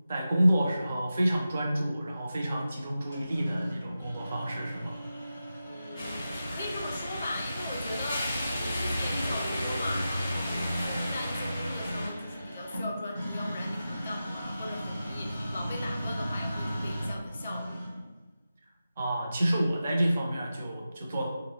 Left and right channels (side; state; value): both; inverted; correlation -0.92